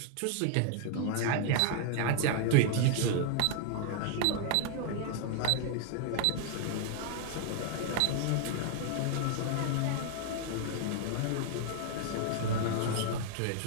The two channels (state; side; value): different; both; correlation 0.00